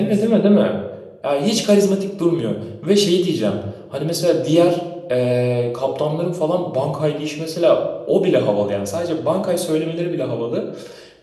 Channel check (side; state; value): both; identical; correlation 1.00